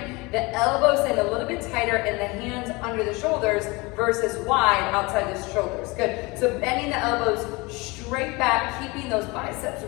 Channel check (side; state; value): right; quieter; 25.0 dB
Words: the elbows in a little bit tighter and the hands under the shoulders versus wide outside the shoulders. Good. So bending the elbows straight back, keeping those biceps